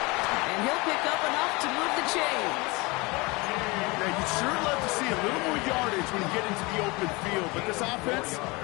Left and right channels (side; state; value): right; quieter; 25.4 dB